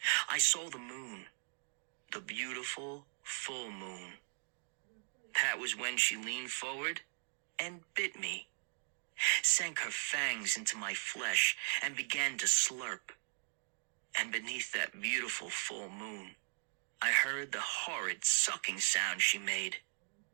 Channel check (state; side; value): silent; left; digital silence